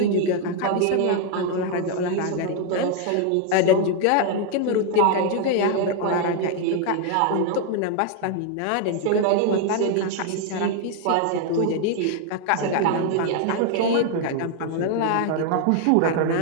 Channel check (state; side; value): different; both; correlation 0.00